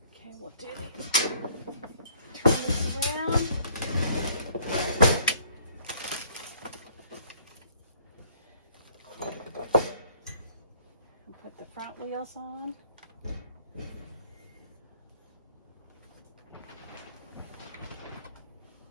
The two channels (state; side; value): inverted; both; correlation -0.59